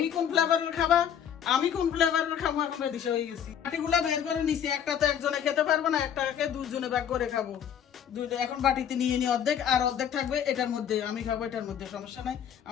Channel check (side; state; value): right; quieter; 8.9 dB